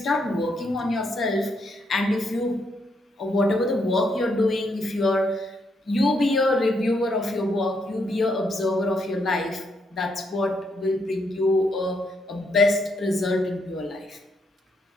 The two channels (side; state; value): both; normal; correlation 0.76